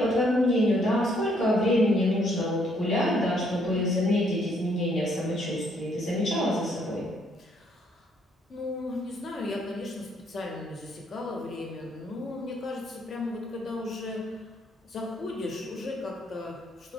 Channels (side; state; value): both; normal; correlation 0.69